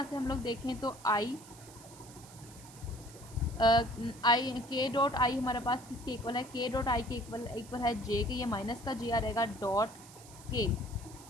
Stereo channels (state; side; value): noise; right; hiss, 19 dB below the sound